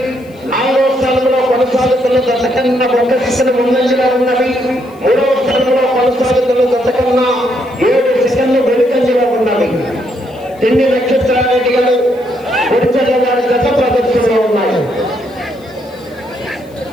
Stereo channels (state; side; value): noise; left; hiss, 30 dB below the sound